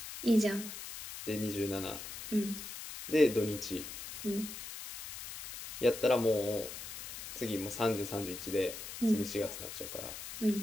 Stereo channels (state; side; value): noise; left; hiss, 10 dB below the sound